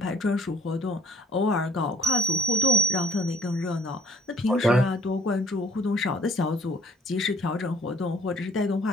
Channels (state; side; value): normal; both; correlation 0.56